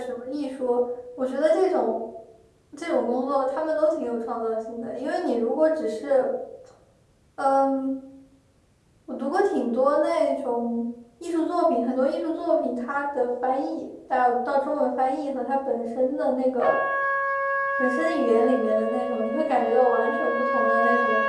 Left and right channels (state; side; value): identical; both; correlation 1.00